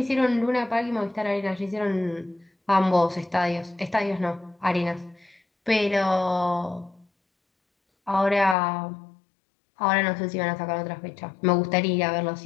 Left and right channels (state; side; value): drops out; right; at 8.6 s